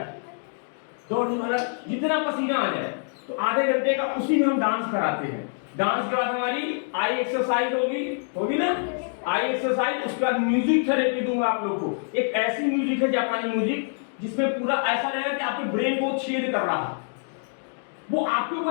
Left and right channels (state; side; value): silent; right; 61 dB below the other